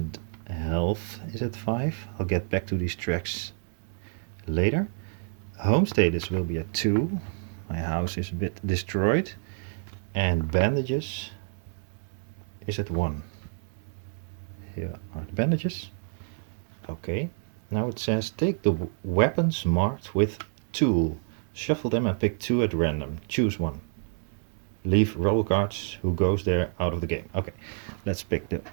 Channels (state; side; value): silent; left; digital silence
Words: health is at 5. I'll get back to these tracks later. Home status will be at 2. My house is a bit destroyed. And bandages is at 1. Here are the bandages. Okay. Now it says take the weapons marked with tool. Shuffle them and pick 2 at random. Choose 1. Leave roll cards who goes there out of the game. Okay. Let's pick the